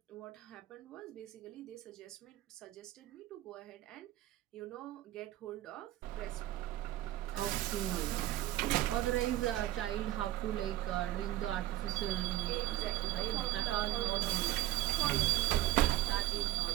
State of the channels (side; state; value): left; quieter; 14.7 dB